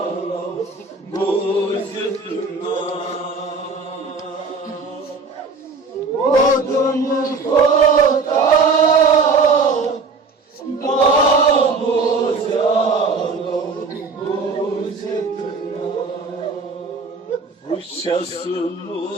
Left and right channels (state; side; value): quieter; left; 4.2 dB